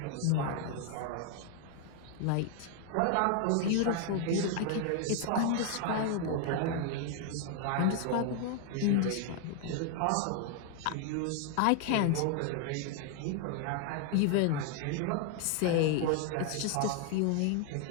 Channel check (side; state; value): both; different; correlation 0.00